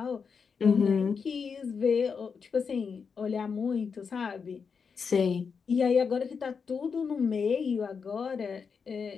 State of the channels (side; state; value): right; quieter; 5.8 dB